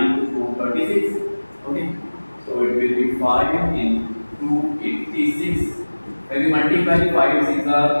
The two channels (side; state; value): both; inverted; correlation -1.00